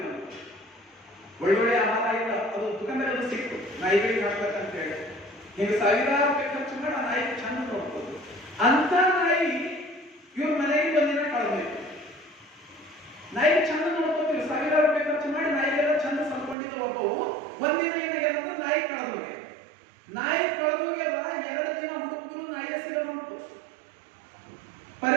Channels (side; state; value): left; drops out; at 16.6 s